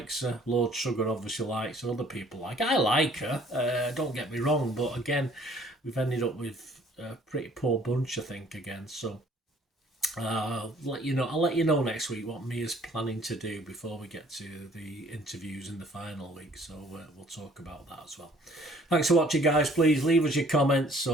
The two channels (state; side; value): normal; both; correlation 0.57